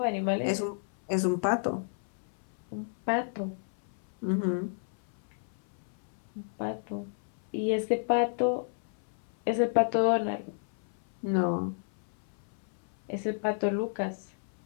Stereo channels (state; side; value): silent; right; 57 dB below the other